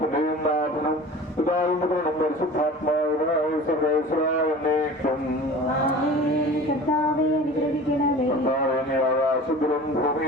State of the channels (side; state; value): both; normal; correlation 0.40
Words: നാഥനും പിതാവും പുത്രനും പരിശുദ്ധാത്മാവിനായ സർവേശ്വരായ എന്നേക്കും. കർത്താവേ, അനുഗ്രഹിക്കണമേ. കർത്താവേ, നീ ആകാശത്തിലും